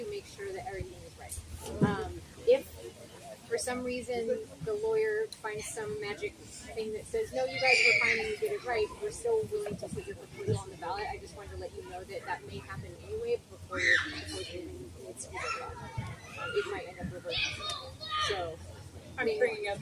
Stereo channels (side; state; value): both; identical; correlation 1.00